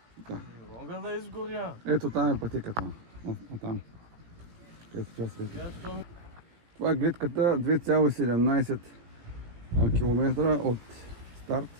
Да. Не мога да изгоря. Ето там е пътеката. Там. Където тя свети. Това е гледката 2,17 км от старт.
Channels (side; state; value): left; late; 17 ms